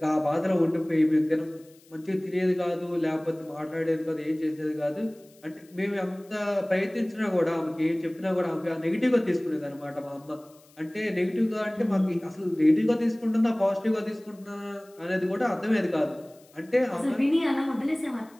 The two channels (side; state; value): left; noise; hiss, 29 dB below the sound